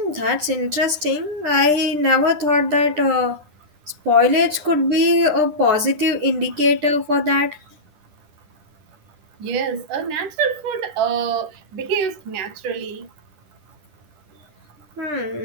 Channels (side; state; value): left; late; 10 ms